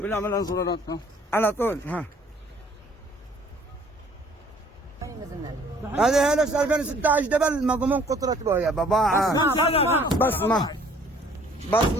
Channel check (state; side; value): normal; both; correlation 0.57